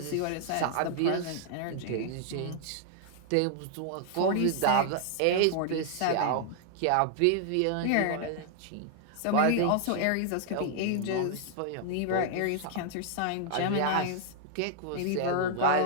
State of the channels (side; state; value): both; different; correlation -0.01